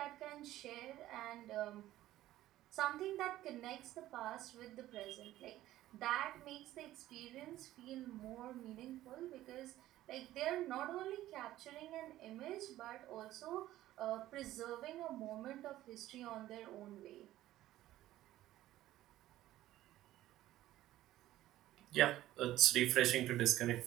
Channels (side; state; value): left; quieter; 14.6 dB